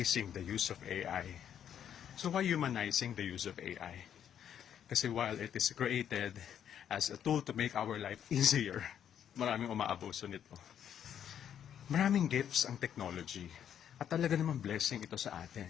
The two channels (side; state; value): right; quieter; 9.3 dB